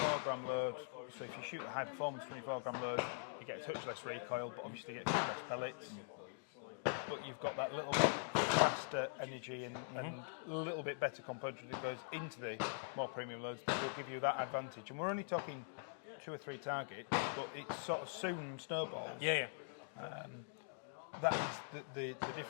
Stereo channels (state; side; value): silent; right; digital silence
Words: gram load, so if you shoot a high performance 24 gram load, you get a touch less recoil, but obviously you get a few less pellets. But you've got that little bit faster energy and a little bit better componentry that goes into the more premium loads that will give you that advantage. And we're only talking 2 or 3 targets, but it sort of soon snowballs. That is the